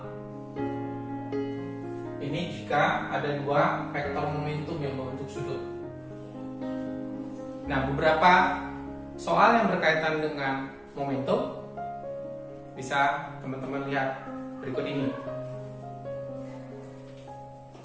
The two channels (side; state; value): both; identical; correlation 1.00